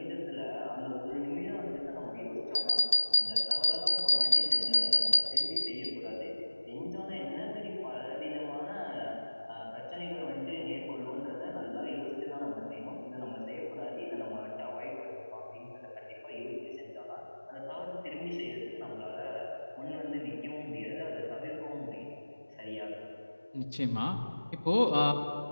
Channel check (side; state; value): both; inverted; correlation -1.00